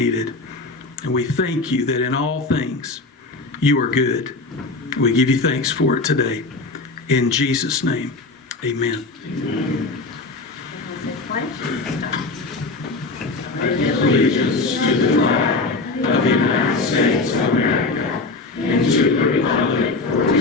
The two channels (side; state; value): right; quieter; 3.5 dB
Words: And we thank you that in all things, you are good. We give you thanks for it today. In Jesus' name, amen. Allegiance to the flag of the United States of America and to the republic for